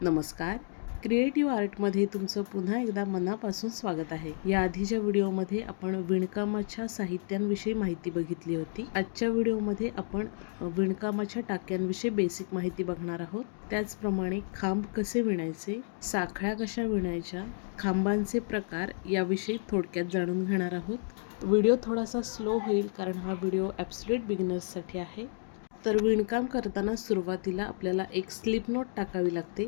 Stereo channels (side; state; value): right; silent; 57 dB below the other